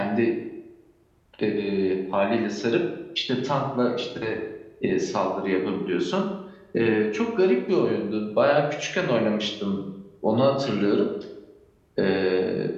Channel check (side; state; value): both; identical; correlation 1.00